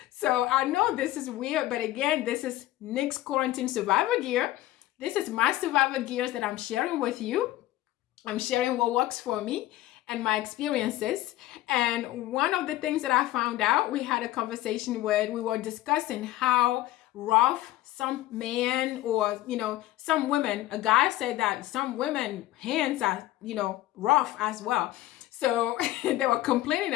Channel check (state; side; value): quieter; right; 15.9 dB